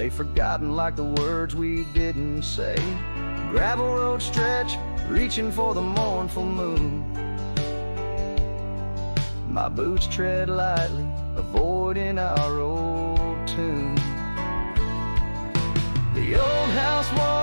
forgotten like the words we didn't say. Gravel road stretch, reaching for the mournful moon. My boots tread lightly, avoiding our old tune. The old house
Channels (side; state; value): both; inverted; correlation -1.00